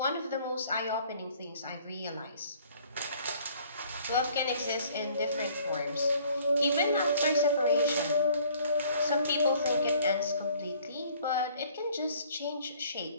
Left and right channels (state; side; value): inverted; both; correlation -0.57